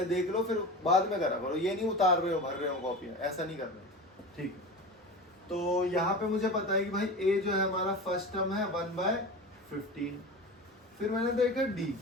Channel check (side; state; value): both; normal; correlation 0.30